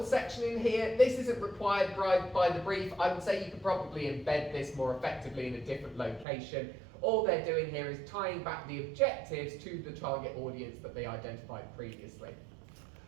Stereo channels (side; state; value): left; drops out; at 6.2 s